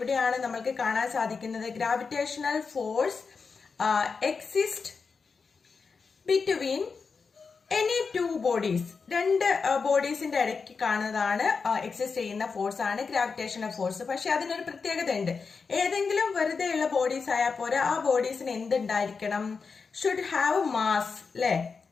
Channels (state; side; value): quieter; right; 5.1 dB